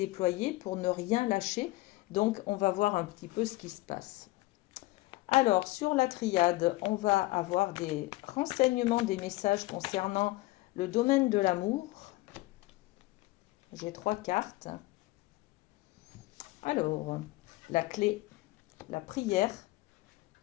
pour ne rien lâcher. Donc, on va voir un petit peu ce qui se passe. Alors, sur la triade, on va avoir des renseignements, des messages concernant le domaine de l'amour. J'ai 3 cartes. Alors, la clé, la prière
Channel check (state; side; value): quieter; right; 19.8 dB